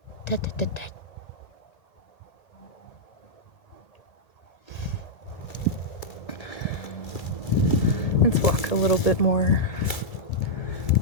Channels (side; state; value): right; late; 1.8 ms